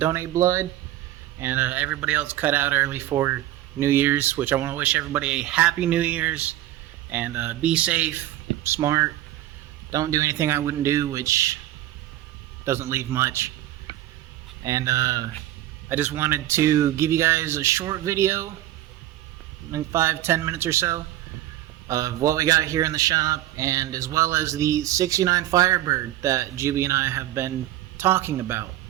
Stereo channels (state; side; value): quieter; left; 14.1 dB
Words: blood, and everybody else cut out early for New Year's, which I want to wish everybody a happy New Year's, and be safe, smart, don't do anything I wouldn't do, which doesn't leave much. And I just wanted to give you guys a short video, like 5-10 minutes or so, of what we got here in the shop, and as well as the 69 Firebird that Juby and I have been talking about.